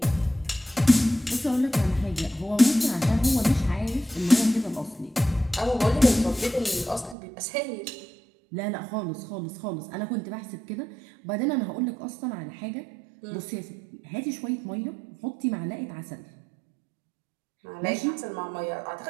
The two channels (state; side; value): drops out; left; at 7.2 s